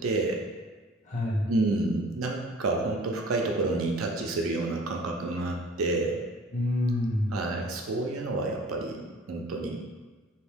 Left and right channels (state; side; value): normal; both; correlation 0.48